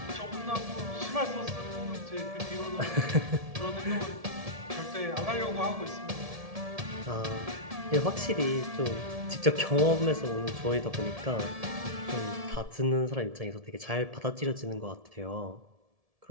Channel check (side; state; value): left; late; 1.7 ms